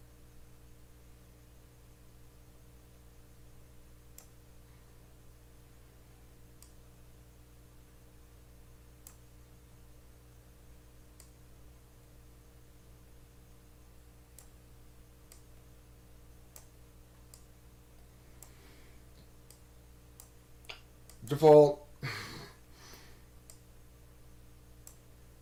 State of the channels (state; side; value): identical; both; correlation 1.00